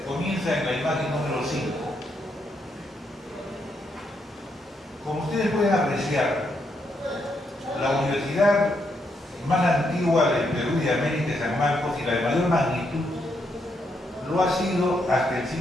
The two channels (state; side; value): normal; both; correlation 0.78